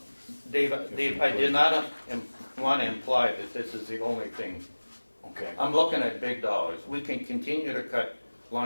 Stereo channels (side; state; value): both; inverted; correlation -1.00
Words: Dave, I did not want to imply that this is the only thing. okay. I'm looking at big dollars. We can continue to cut